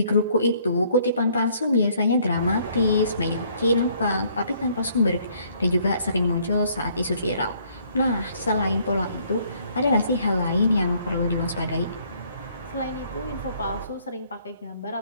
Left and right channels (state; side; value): inverted; both; correlation -0.63